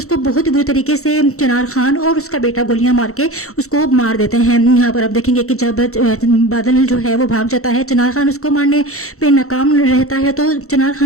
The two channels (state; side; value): late; right; 0.64 ms